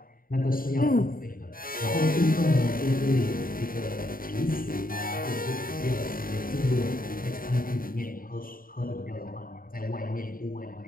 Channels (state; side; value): late; right; 0.41 ms